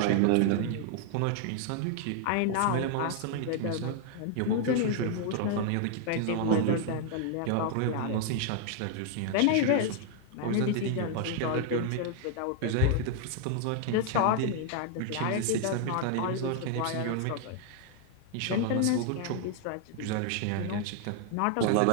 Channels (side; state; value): both; different; correlation 0.00